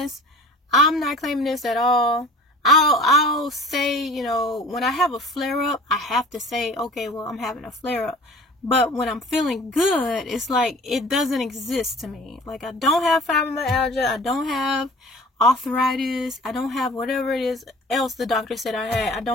I'm not claiming this at all. I'll say, you know, when I have a flare-up, I have to say, okay, well, I'm having a flare-up. But when I'm feeling good, it's like it doesn't exist to me. Like, I don't have fibromyalgia. I don't have arthritis. I don't have whatever it is else the doctor said I had. I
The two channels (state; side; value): normal; both; correlation 0.44